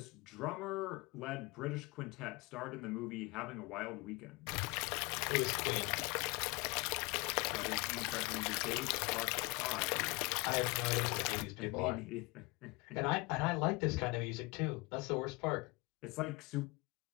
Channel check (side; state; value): right; quieter; 25.5 dB